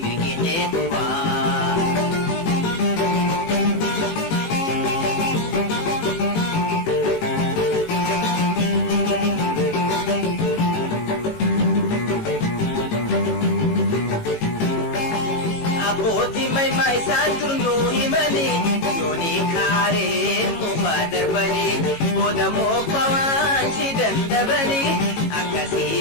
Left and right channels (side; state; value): right; late; 18 ms